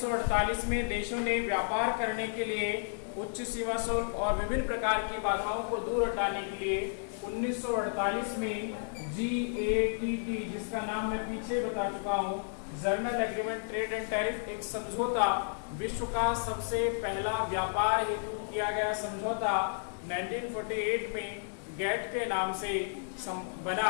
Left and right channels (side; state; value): right; silent; 56 dB below the other